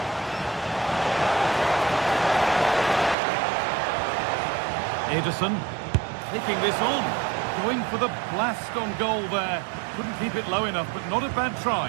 Ederson taking this on, going for the blast on goal there. Couldn't keep it low enough, but not a bad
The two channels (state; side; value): drops out; left; at 3.2 s